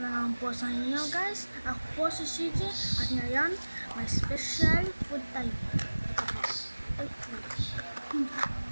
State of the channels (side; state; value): both; inverted; correlation -1.00